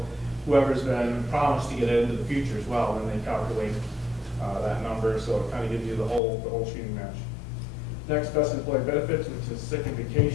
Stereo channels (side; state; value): right; drops out; at 6.2 s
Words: whoever's been promised to get it into the future as well, when they calculate that number, so it kind of gives you the whole shooting match. Next, best employee benefits, which is sick and